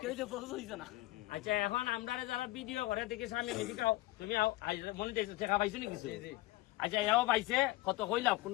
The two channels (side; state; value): right; quieter; 18.9 dB